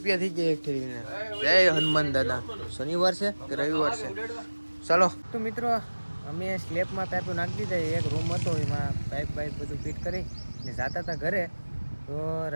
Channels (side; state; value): both; inverted; correlation -1.00